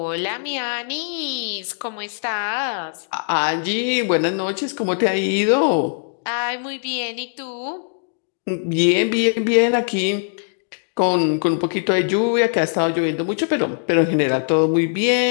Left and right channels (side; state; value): right; silent; digital silence